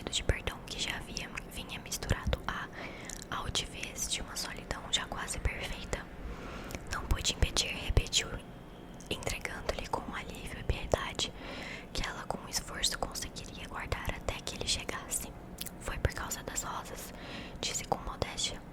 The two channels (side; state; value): both; identical; correlation 1.00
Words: de perdão que já vinha misturado à altivez de uma solidão já quase perfeita. Não pude impedir, repetiu, entregando-lhe com alívio e piedade que ela com esforço conseguiria guardar até que ele chegasse. Foi por causa das rosas, disse com modéstia,